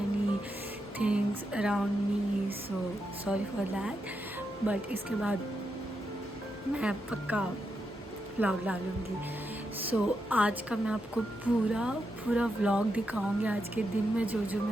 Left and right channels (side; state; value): both; normal; correlation 0.84